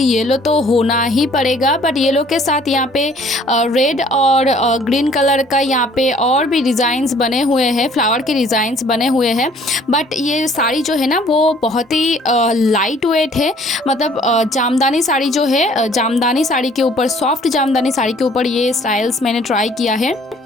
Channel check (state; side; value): normal; both; correlation 0.57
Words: येलो तो होना ही पड़ेगा, बट येलो के साथ यहाँ पे रेड और ग्रीन कलर का यहाँ पे और भी डिज़ाइंस बने हुए हैं, फ्लावर के डिज़ाइंस बने हुए हैं। बट ये साड़ी जो है ना वो बहुत ही लाइट वेट है। मतलब जामदानी साड़ी जो है, जामदानी साड़ी के ऊपर, सॉफ्ट जामदानी साड़ी के ऊपर ये स्टाइल्स मैंने ट्राई किया है।